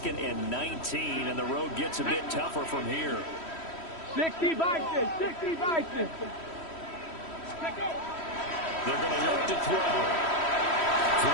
and 19, and the road gets a bit tougher from here. 60 Vikings, 60 Vikings. They're going to look to throw. Throw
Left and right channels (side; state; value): right; late; 3.1 ms